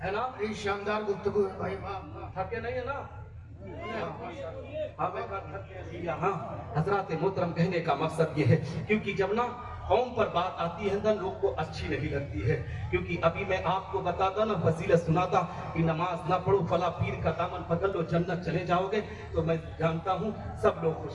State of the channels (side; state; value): both; identical; correlation 1.00